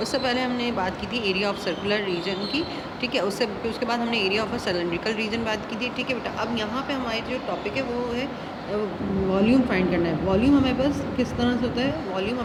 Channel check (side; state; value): both; identical; correlation 1.00